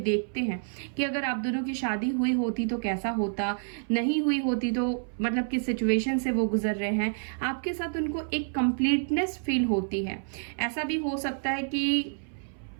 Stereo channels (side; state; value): left; silent; 59 dB below the other